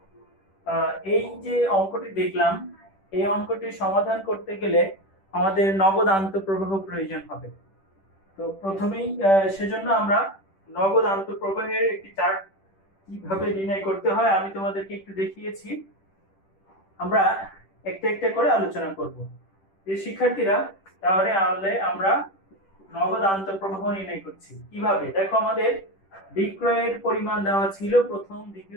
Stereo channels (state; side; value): late; right; 10 ms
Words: এই যে অঙ্কটি দেখলাম, এই অঙ্কটি সমাধান করতে গেলে আমাদের নগদ আন্তঃপ্রবাহ প্রয়োজন হবে। তো প্রথমেই সেজন্য আমরা নগদ আন্তঃপ্রবাহের একটি চার্ট কিভাবে নির্ণয় করতে হয় আমি তোমাদেরকে একটু দেখিয়েছি। আমরা একটা একটা করে আলোচনা করব। এই শিক্ষার্থীরা, তাহলে আমরা নগদ আন্তঃপ্রবাহ নির্ণয় করছি কিভাবে। দেখো, আমাদের বিক্রয়ের পরিমাণ দেওয়া ছিল প্রথম,